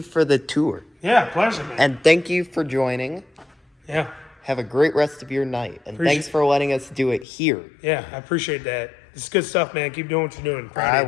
for the tour. Yeah, pleasure, man. And thank you for joining. Yeah. Have a great rest of your night. And thanks for letting us do it here. Yeah, I appreciate that. It's good stuff, man. Keep doing what you're doing. Proud of I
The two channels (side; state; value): right; drops out; at 7.2 s